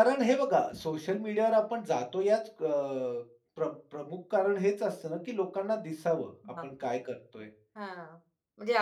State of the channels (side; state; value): both; identical; correlation 1.00